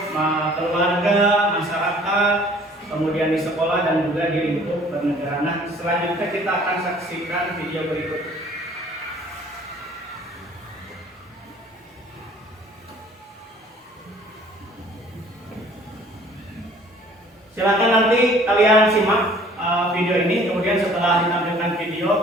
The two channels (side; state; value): both; normal; correlation 0.54